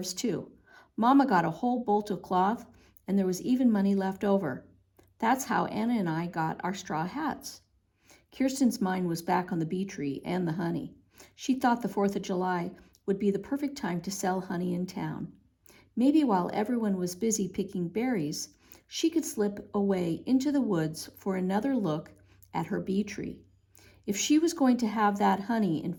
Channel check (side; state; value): both; identical; correlation 1.00